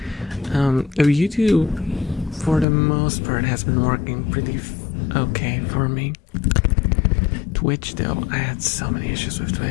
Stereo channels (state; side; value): drops out; right; at 2.7 s